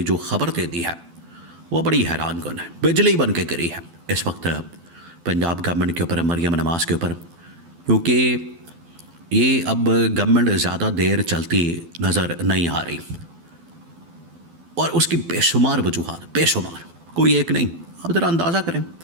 جو خبر دے دی ہے وہ بڑی حیران کن ہے، بجلی بن کے گری ہے اس وقت پنجاب گورنمنٹ کے اوپر، مریم نواز کے اوپر، کیونکہ یہ اب گورنمنٹ زیادہ دیر چلتی نظر نہیں آ رہی، اور اس کی بے شمار وجوہات، بے شمار، کوئی ایک نہیں۔ آپ ذرا اندازہ کریں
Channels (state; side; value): late; left; 12 ms